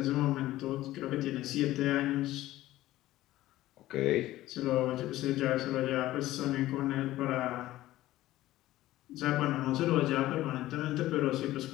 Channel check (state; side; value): quieter; right; 15.7 dB